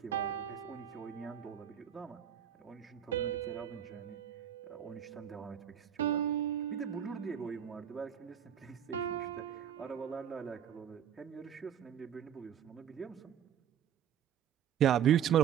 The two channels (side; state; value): left; quieter; 9.6 dB